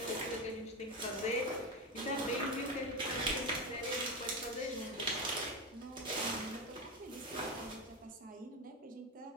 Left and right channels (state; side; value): normal; both; correlation 0.16